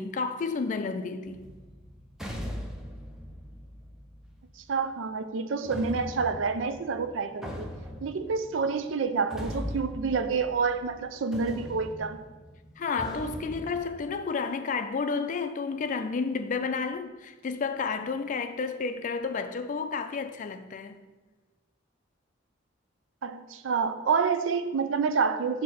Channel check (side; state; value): both; normal; correlation -0.09